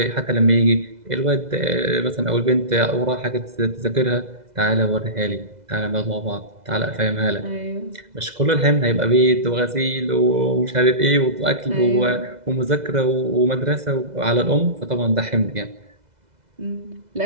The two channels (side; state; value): left; late; 2.0 ms